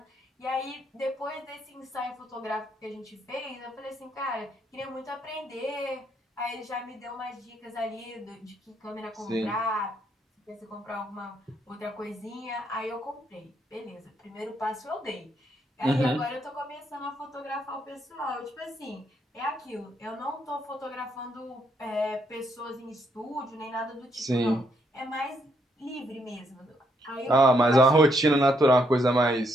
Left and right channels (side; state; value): both; normal; correlation 0.74